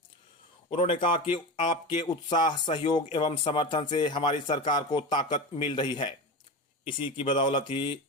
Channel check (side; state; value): both; normal; correlation 0.24